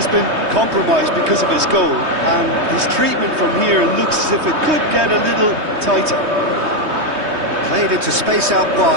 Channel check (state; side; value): late; left; 3.2 ms